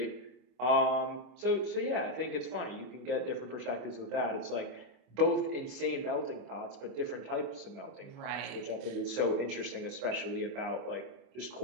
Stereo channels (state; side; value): late; left; 24 ms